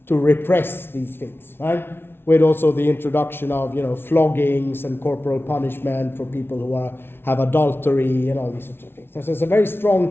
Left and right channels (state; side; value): late; right; 0.11 ms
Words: to repress these things, right? With also the introduction of, floggings and corporal punishment for people who have adultery and all these sorts of things. So there's a very